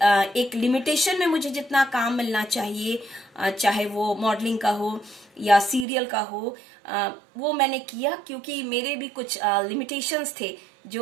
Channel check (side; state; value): left; drops out; at 5.9 s